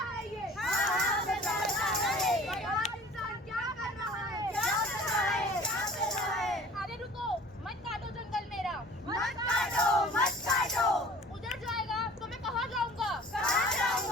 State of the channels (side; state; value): both; normal; correlation 0.47